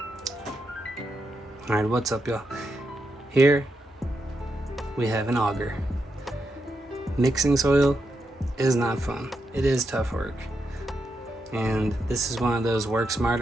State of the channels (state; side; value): normal; both; correlation 0.84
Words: Alright, what's up, y'all? Here we have an auger. Mixing soil is not fun. It is tough work. And this is one of those work